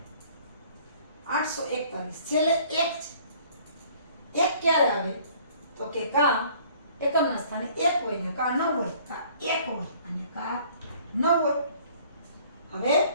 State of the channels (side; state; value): both; inverted; correlation -0.55